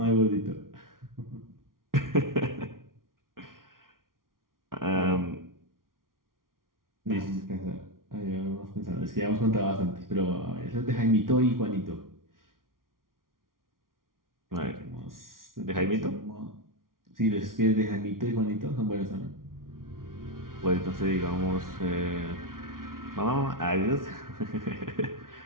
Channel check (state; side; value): late; left; 0.91 ms